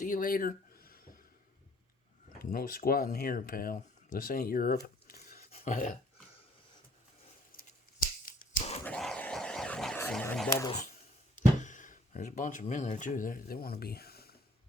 you later. No squatting here, pal. This ain't Europe. Some bubbles. There's a bunch of them in there, too. They want to be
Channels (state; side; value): normal; both; correlation 0.61